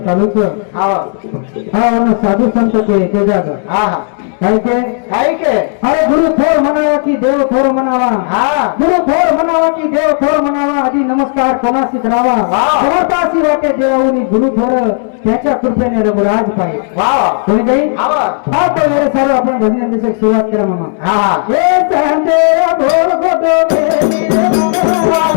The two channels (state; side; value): silent; right; 59 dB below the other